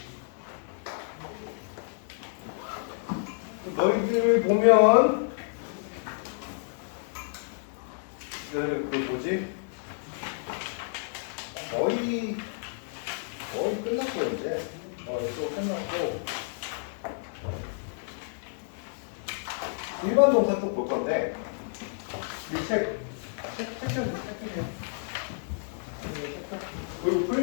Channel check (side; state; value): right; silent; digital silence